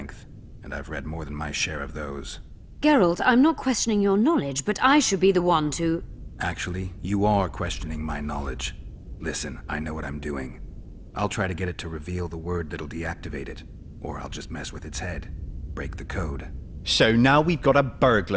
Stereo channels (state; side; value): identical; both; correlation 1.00